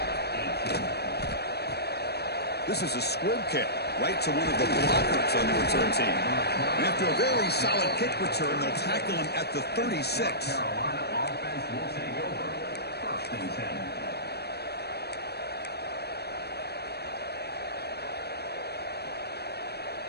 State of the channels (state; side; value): late; right; 0.47 ms